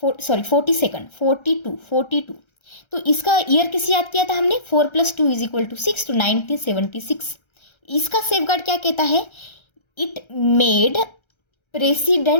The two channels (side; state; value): right; late; 1.3 ms